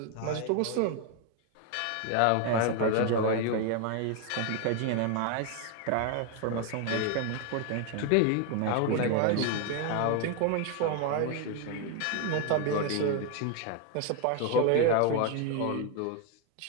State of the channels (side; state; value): both; different; correlation 0.01